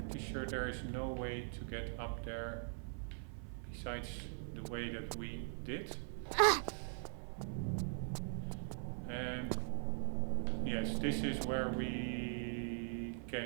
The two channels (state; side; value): silent; left; 50 dB below the other